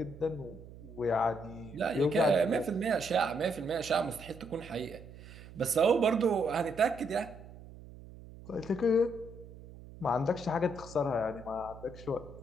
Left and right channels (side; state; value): right; noise; hum, 17 dB below the sound